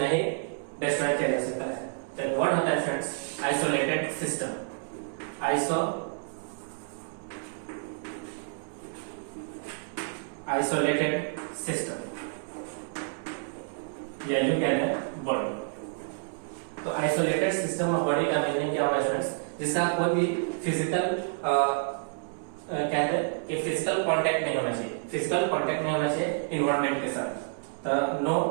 ही डिस्ट्रॉय किया जा सकता है। तो व्हाट होता है students? Isolated system. Isolated system या यूं कहते हैं बॉडी। तो आइसोलेटेड सिस्टम ऑफ बॉडी का मीनिंग क्या हुआ स्टूडेंट्स? जिसका कोई भी फिजिकल कहते हैं कि फिजिकल कांटेक्ट नहीं होना चाहिए, फिजिकल कांटेक्ट नहीं होना चाहिए इन्वायरमेंट के साथ। तो no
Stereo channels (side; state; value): left; silent; 58 dB below the other